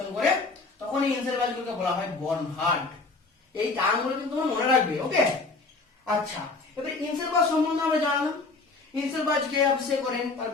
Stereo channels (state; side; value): quieter; right; 3.8 dB